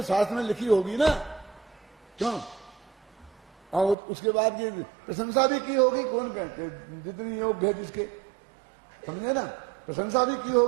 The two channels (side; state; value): left; drops out; at 4.0 s